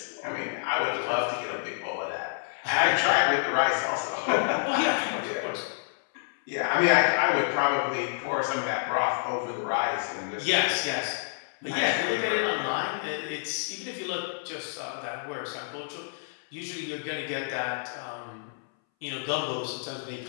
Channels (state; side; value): silent; right; 59 dB below the other